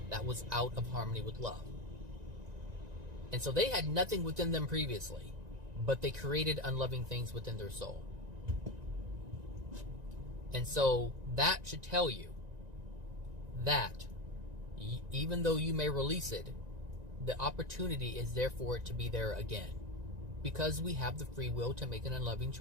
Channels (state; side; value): late; left; 1.9 ms